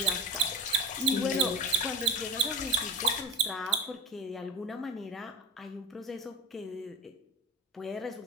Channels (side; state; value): both; normal; correlation 0.31